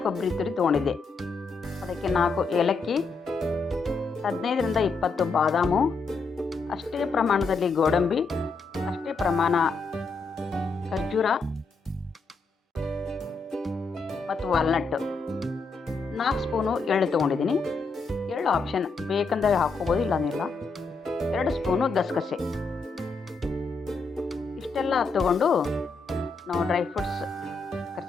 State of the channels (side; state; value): right; quieter; 4.1 dB